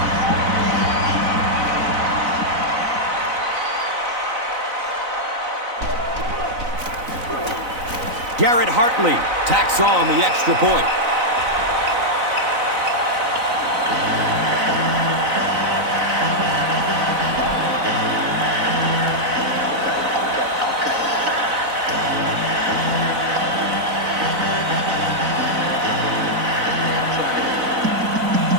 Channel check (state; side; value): late; left; 4.0 ms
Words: Garrett Hartley tacks on the extra point.